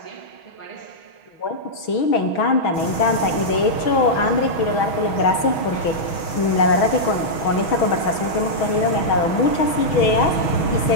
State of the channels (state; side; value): late; right; 6.2 ms